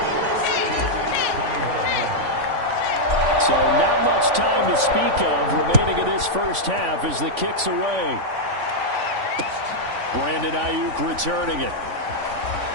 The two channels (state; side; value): late; left; 3.5 ms